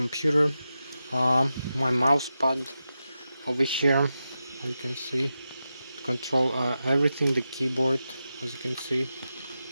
my mouse pad over here, as you can see, to control everything, the keyboard, as you can see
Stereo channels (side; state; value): both; inverted; correlation -0.90